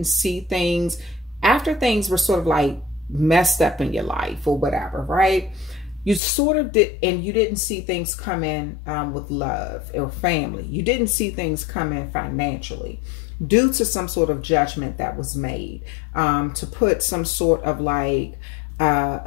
see things after things were sort of like messed up in your life or whatever, right? You sort of did, and you didn't see things come in with love or family. You didn't see things come in financially due to some sort of judgment that was made to put some sort of like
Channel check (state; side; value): drops out; right; at 6.2 s